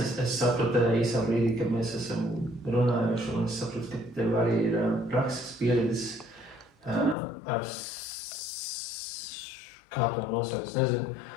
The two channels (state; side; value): drops out; right; at 7.2 s